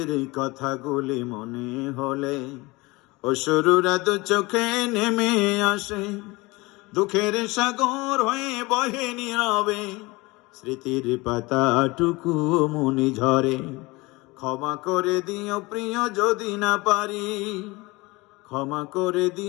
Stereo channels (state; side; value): quieter; right; 23.1 dB